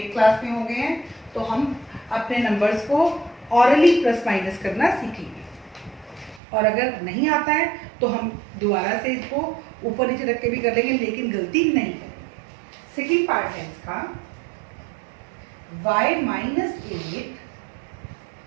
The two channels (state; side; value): drops out; left; at 6.4 s